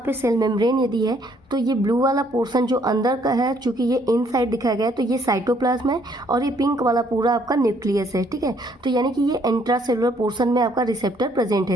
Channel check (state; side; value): normal; both; correlation 0.66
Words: पे सेल मेम्ब्रेन यदि है तो ये ब्लू वाला पोर्शन जो अंदर का है, चूँकि ये इनसाइड दिखाया गया है तो ये साइटोप्लाज्म है और ये पिंक वाला पूरा आपका न्यूक्लियस है, ठीक है। तो यानी कि ये इंट्रासेलुलर पोर्शन में आपका रिसेप्टर प्रेजेंट है,